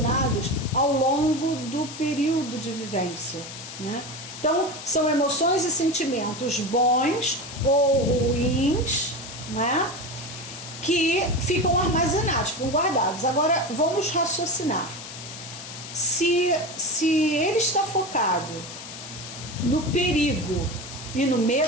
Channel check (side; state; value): left; noise; hiss, 12 dB below the sound